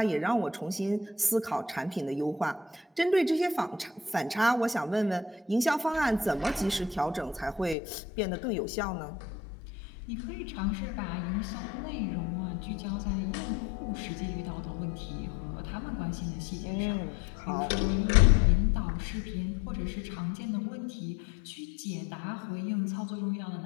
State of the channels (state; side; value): drops out; right; at 7.8 s